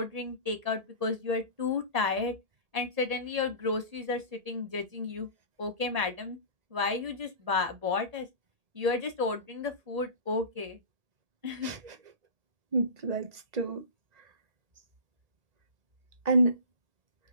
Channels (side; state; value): left; late; 1.8 ms